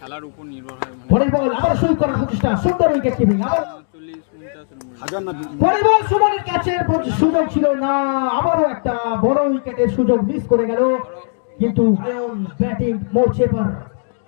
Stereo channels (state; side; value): silent; right; digital silence